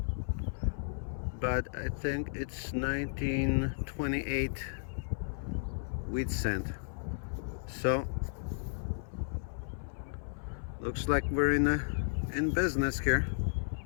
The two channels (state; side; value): silent; right; 55 dB below the other